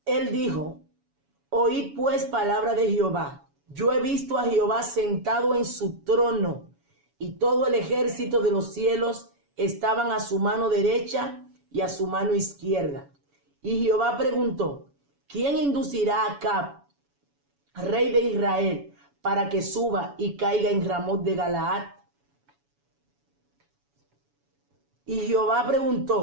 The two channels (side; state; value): left; late; 7.1 ms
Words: él dijo: oíd pues palabra de Jehová. Yo he visto a Jehová sentado en su trono, y todo el ejército de los cielos estaban a su mano derecha y a su mano izquierda. Y Jehová preguntó: ¿quién inducirá a Acab, rey de Israel, para que suba y caiga en Ramot de Galaad? Y Jehová